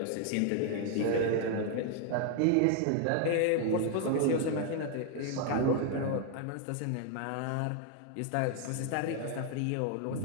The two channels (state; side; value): different; both; correlation 0.00